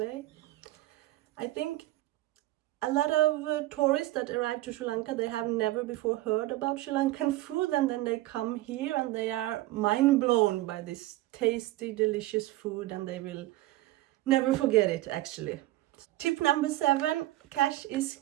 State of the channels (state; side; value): quieter; left; 17.1 dB